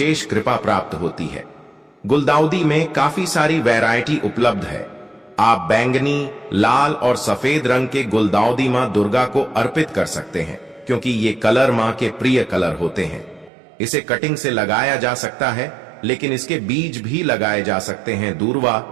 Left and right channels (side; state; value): left; drops out; at 13.5 s